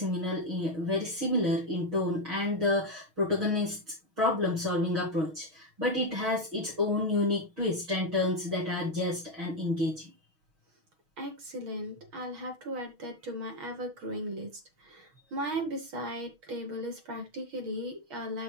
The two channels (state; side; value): late; left; 6.3 ms